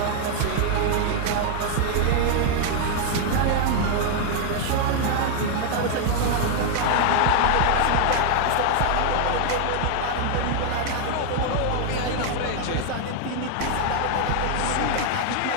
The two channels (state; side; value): different; both; correlation 0.00